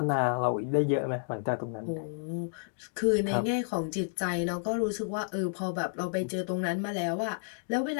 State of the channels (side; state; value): right; silent; digital silence